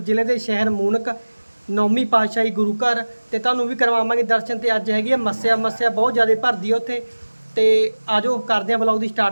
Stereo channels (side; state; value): both; inverted; correlation -1.00